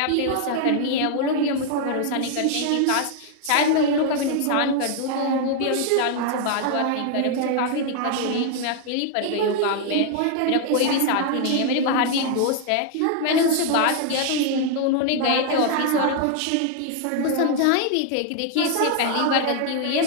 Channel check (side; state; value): both; different; correlation 0.00